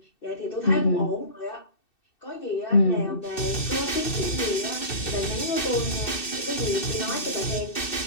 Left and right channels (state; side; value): late; right; 2.6 ms